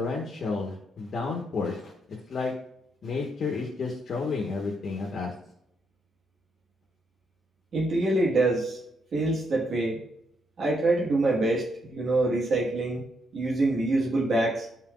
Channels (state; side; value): normal; both; correlation 0.78